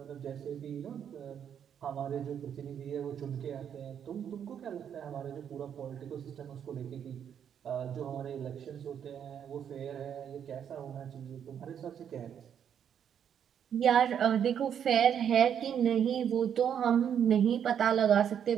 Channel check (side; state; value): left; quieter; 8.6 dB